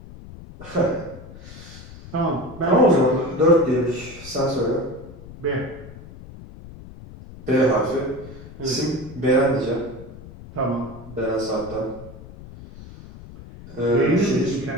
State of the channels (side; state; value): left; noise; rumble, 16 dB below the sound